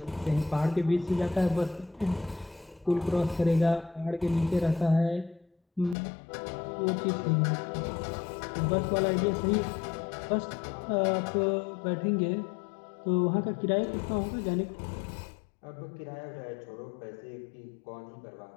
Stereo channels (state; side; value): drops out; right; at 6.0 s